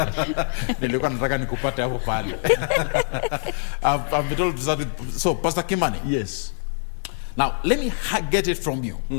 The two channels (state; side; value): silent; right; digital silence